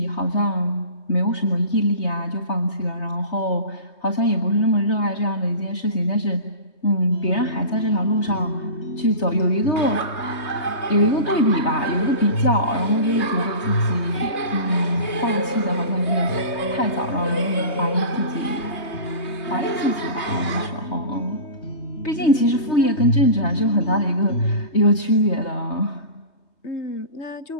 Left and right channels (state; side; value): late; right; 3.2 ms